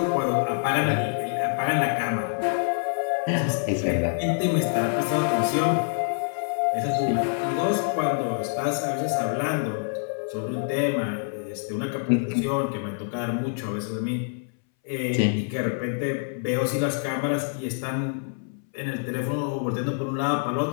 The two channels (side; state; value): right; silent; 61 dB below the other